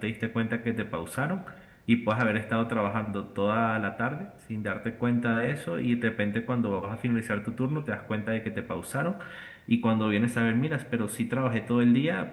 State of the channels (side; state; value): both; identical; correlation 1.00